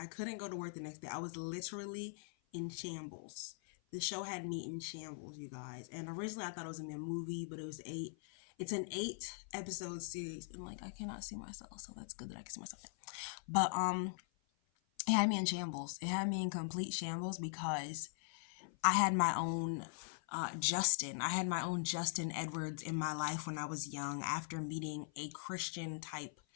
couldn't go to work the next day. I was literally in shambles. The show had me in shambles, you guys. And originally I thought it was gonna be a movie, but it was eight. It's an 8 episode series, and like I cannot see myself, so that's good that I can see myself. But it had me in shambles. It had me in complete shambles because I had my own Justin. I had my own Justin Edwards in my life when I was young after meeting a Christian type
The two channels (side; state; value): right; silent; 50 dB below the other